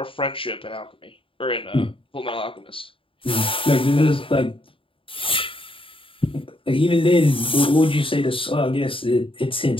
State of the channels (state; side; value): late; right; 0.26 ms